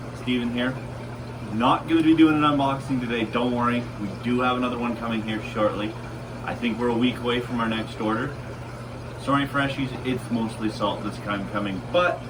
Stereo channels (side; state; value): both; identical; correlation 1.00